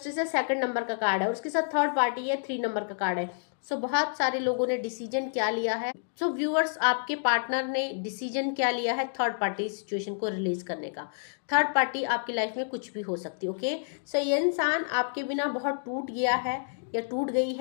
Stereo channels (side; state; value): right; silent; digital silence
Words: है 2nd नंबर का कार्ड है, और उसके साथ थर्ड पार्टी है 3 नंबर का कार्ड है। सो बहुत सारे लोगों ने डिसीजन क्या लिया है। सो व्यूअर्स, आपके पार्टनर ने डिसीजन क्या लिया है थर्ड पार्टी सिचुएशन को रिलीज करने का। थर्ड पार्टी आपकी लाइफ में कुछ भी हो सकती है। ओके, सो ये इंसान आपके बिना बहुत टूट गया है या टूट गई